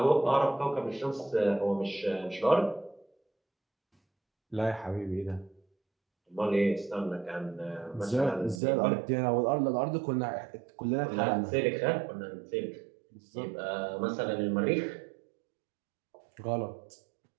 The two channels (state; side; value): drops out; left; at 8.6 s